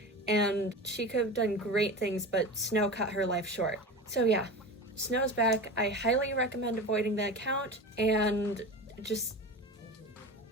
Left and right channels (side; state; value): both; normal; correlation 0.29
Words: and she could have done great things, but Snow cut her life short. So yeah, Snow's back. I highly recommend avoiding the account, and just